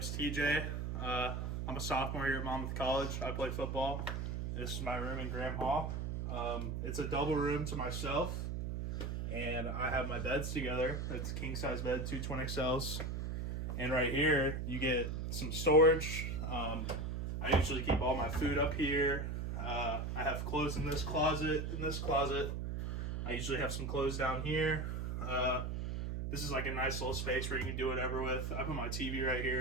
TJ. I'm a sophomore here at Monmouth College. I play football. This is my room in Graham Hall. It's a double room to myself, and I have my beds together. It's a king-size bed, two twin XLs. And right here, you get some storage. I usually keep all my food up here. I have clothes in this closet. I usually have some clothes down here. This is like a nice little space where you can do whatever with. I put my TV right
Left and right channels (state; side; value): noise; right; hum, 2 dB below the sound